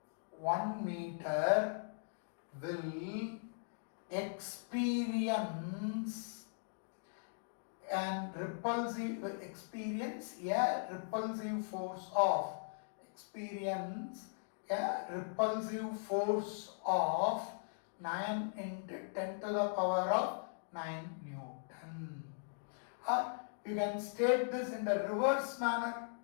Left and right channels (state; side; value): silent; right; digital silence